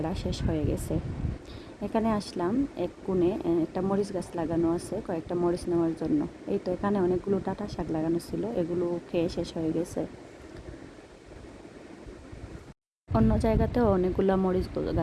শেষ হয়ে গেছে। এখানে আসলাম এক কোণে, একটা মরিচ গাছ লাগানো আছে, কয়েকটা মরিচ নেওয়ার জন্য। এই তো এখানে অনেকগুলো ডাঁটা শাক লাগানো ছিল, এগুলো খেয়ে শেষ হয়ে গেছে। অন্য জায়গাতেও অনেকগুলো মরিচ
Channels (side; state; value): both; identical; correlation 1.00